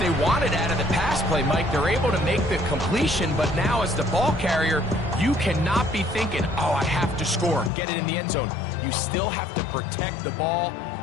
wanted out of the pass play, Mike. They're able to make the completion, but now as the ball carrier, you cannot be thinking, oh, I have to score, get it in the end zone. You still have to protect the ball.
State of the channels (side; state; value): right; drops out; at 7.7 s